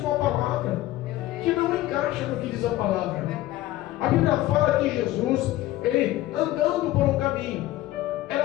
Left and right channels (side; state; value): right; quieter; 15.8 dB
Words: a palavra, que não encaixa no que diz a palavra. A Bíblia fala que Jesus, ele andando por um caminho,